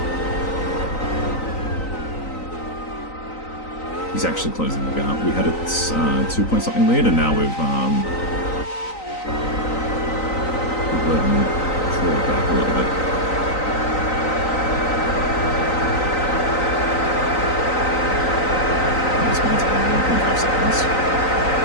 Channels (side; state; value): right; late; 3.9 ms